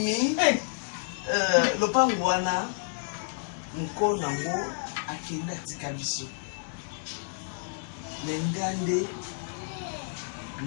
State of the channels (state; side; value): silent; right; digital silence